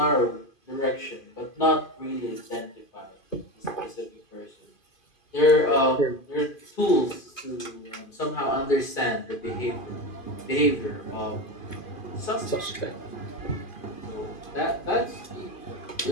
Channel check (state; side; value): late; right; 2.4 ms